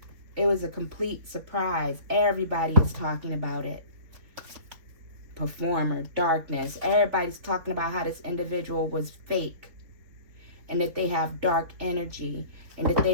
it was a complete surprise. Everybody is talking about it. Performer, darkness. Everybody's talking about how this individual was fake and that they have dark energy and that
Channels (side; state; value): left; late; 4.0 ms